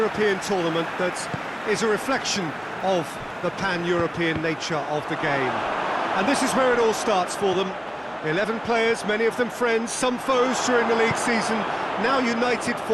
tournament that is a reflection of the pan-European nature of the game. And this is where it all starts for them. 11 players, many of them friends, some foes during the league season, now united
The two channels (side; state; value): right; noise; hum, 30 dB below the sound